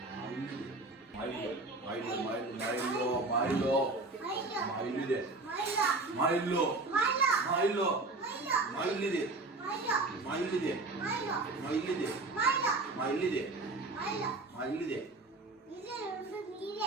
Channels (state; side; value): quieter; left; 3.3 dB